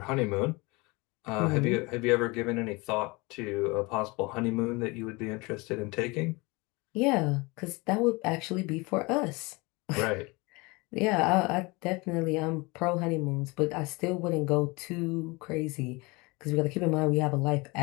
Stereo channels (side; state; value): right; quieter; 25.6 dB